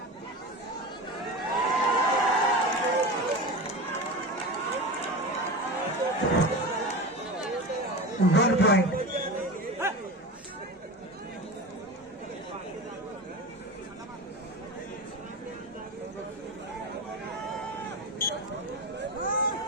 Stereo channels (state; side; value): normal; both; correlation 0.27